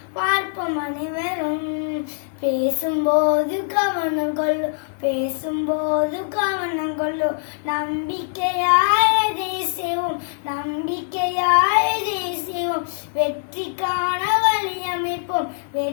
பார்ப்போம் அனைவரும். பேசும்போது கவனம் கொள்ளு, பேசும்போது கவனம் கொள்ளு, நம்பிக்கையாய் செய்வோம், நம்பிக்கையாய் செய்வோம். வெற்றிக்கான வழி அமைப்போம்,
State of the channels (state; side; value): silent; right; 57 dB below the other